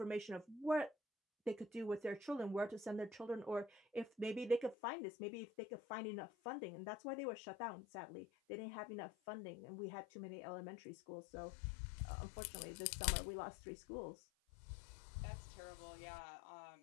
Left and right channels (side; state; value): right; drops out; at 4.8 s